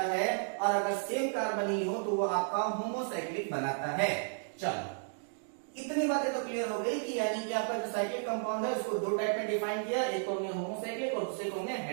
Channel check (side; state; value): left; silent; digital silence